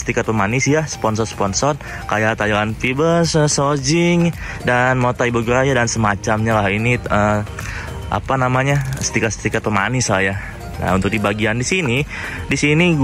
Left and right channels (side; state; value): both; identical; correlation 1.00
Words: pemanis ya, sponsor-sponsor kayak Thailand Fibers, Sojing, dan Motai Bogoraya dan semacamnya lah. Ini apa namanya, stiker-stiker pemanis lah ya. Nah untuk di bagian di sini